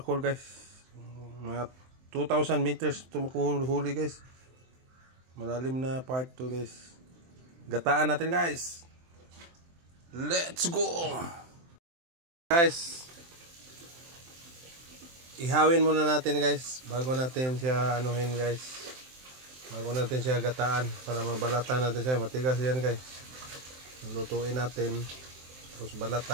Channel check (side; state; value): left; late; 23 ms